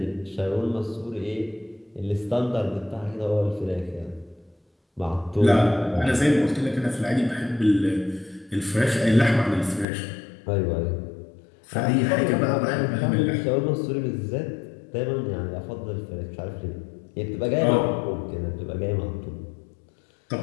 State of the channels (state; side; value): drops out; right; at 9.9 s